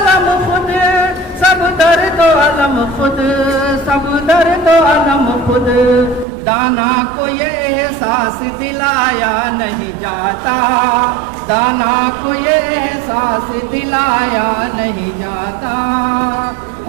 खुद, सब दर्द अलम खुद, सब दर्द अलम खुद। दाना को ये एहसास दिलाया नहीं जाता, दाना को ये एहसास दिलाया नहीं जाता।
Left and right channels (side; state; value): left; drops out; at 6.2 s